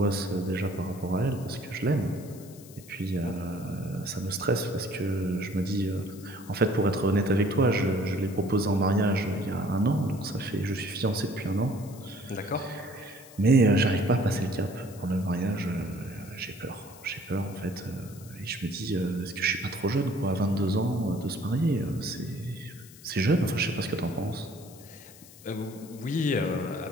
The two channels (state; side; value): noise; left; hiss, 20 dB below the sound